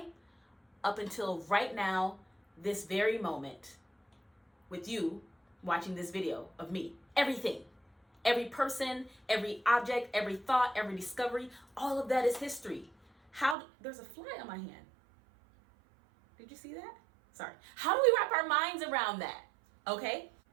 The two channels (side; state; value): left; drops out; at 13.6 s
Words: up until right now, this very moment, with you watching this video of me. Everything. Every person, every object, every thought, every discovery, all of that is history. There's a fly on my hand. Did you see that? Sorry. How do we wrap our minds around that? Okay?